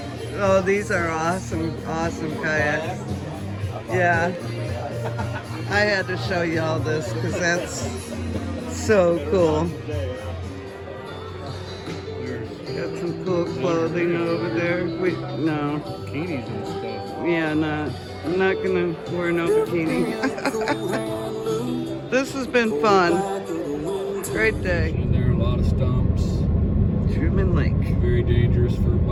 Oh, these are awesome, awesome kayaks. Yeah. I had to show you all this because that's so cool. Got some cool clothing over there. No. Bikinis and stuff. Yeah, I'm not gonna wear no bikini. This has been fun. Great day. And there are a lot of stumps. Truman Lake. Very dangerous for a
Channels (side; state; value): both; identical; correlation 1.00